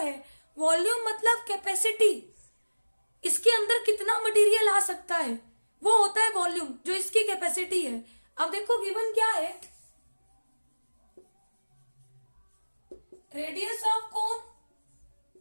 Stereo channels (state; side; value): inverted; both; correlation -1.00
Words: वॉल्यूम मतलब कैपेसिटी, इसके अंदर कितना मटेरियल आ सकता है, वो होता है वॉल्यूम, जो इसकी कैपेसिटी है। अब देखो गिवन क्या है, radius of cone